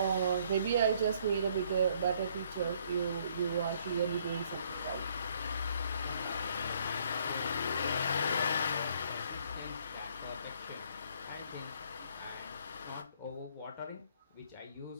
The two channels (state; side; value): inverted; both; correlation -0.64